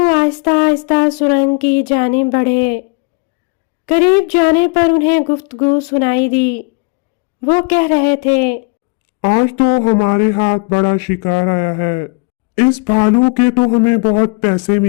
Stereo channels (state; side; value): quieter; right; 31.9 dB